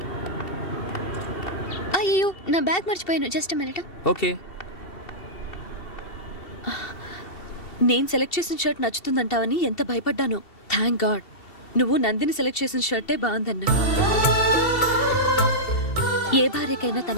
అయ్యో, నా బ్యాగ్ మర్చిపోయాను. Just minute. ఓకే. నేను సెలెక్ట్ చేసిన షర్ట్ నచ్చుతుందంటావని ఎంత భయపడ్డాను. థ్యాంక్ గాడ్ నువ్వు నందిని సెలెక్ట్ చేసిన షర్టే బాగుందన్నా. ఏ భార్యకైనా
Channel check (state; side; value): late; right; 2.7 ms